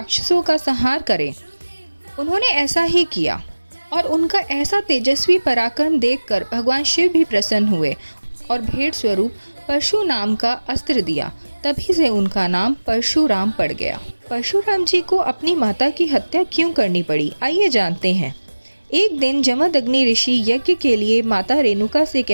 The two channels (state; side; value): inverted; both; correlation -1.00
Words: का संहार करें। उन्होंने ऐसा ही किया और उनका ऐसा तेजस्वी पराक्रम देखकर भगवान शिव भी प्रसन्न हुए और भेंट स्वरूप परशु नाम का अस्त्र दिया। तभी से उनका नाम परशुराम पड़ गया। परशुराम जी को अपनी माता की हत्या क्यों करनी पड़ी, आइए जानते हैं। एक दिन जमदग्नि ऋषि यज्ञ के लिए माता रेणुका से